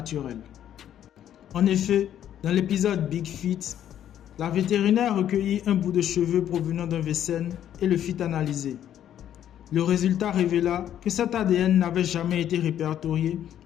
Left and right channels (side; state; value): right; quieter; 10.6 dB